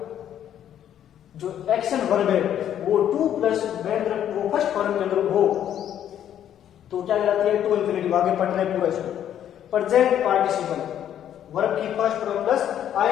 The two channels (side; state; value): right; quieter; 10.3 dB